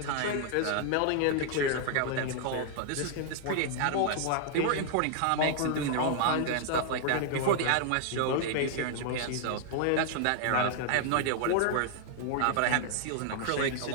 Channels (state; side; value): different; both; correlation -0.01